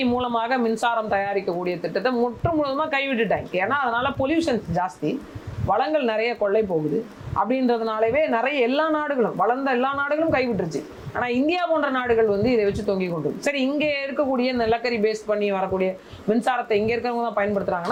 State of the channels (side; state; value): both; identical; correlation 1.00